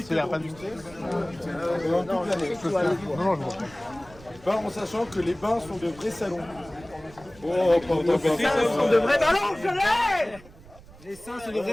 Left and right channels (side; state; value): right; noise; rumble, 22 dB below the sound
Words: que de robustesse. Pendant toute l'année. En sachant que les bains sont de vrais salons. Oh, Les seins sont de vrais ballons, je l'ai. Les seins, c'est de